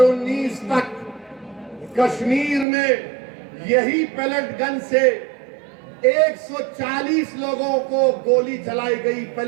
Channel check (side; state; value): left; drops out; at 2.7 s